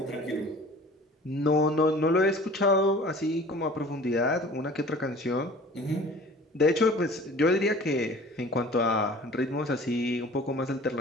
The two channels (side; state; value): both; normal; correlation 0.45